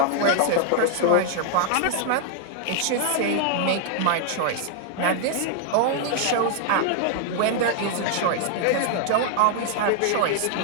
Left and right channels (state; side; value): different; both; correlation 0.00